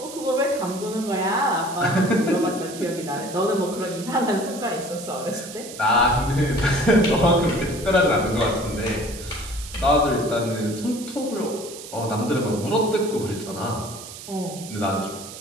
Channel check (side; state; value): right; noise; hiss, 13 dB below the sound